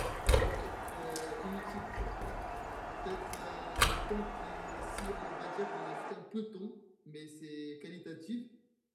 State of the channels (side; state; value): both; identical; correlation 1.00